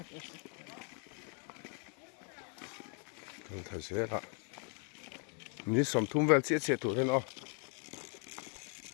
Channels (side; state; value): right; quieter; 39.1 dB